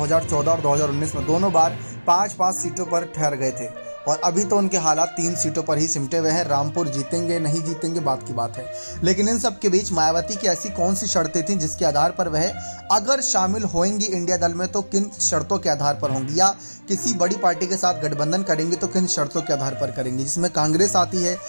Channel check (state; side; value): inverted; both; correlation -1.00